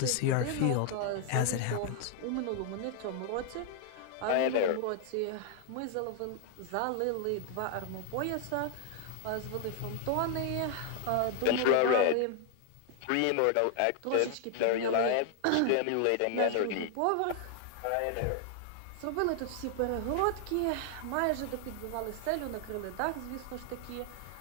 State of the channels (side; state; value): both; different; correlation 0.00